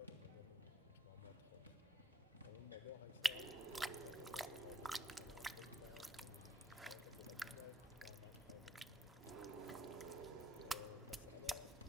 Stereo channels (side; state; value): both; normal; correlation 0.69